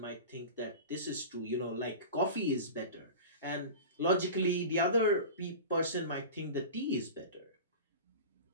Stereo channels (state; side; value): inverted; both; correlation -0.31